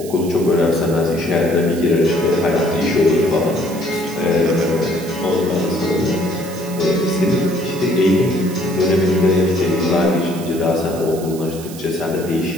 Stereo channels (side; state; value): right; noise; hiss, 16 dB below the sound